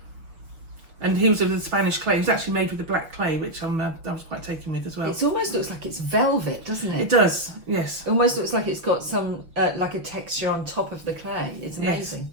And he was of the Spanish clay. He was actually made with the black clay, which I was quite taken with as well. It almost looks like it's velvet, doesn't it? It does, yes. It almost looks like it's got some like a texture on top of the clay. It's amazing.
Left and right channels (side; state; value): left; late; 6.0 ms